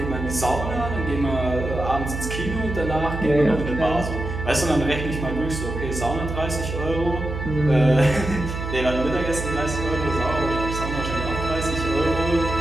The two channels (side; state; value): right; noise; hum, 5 dB below the sound